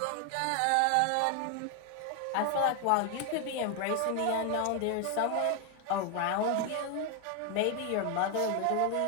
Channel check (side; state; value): both; different; correlation 0.01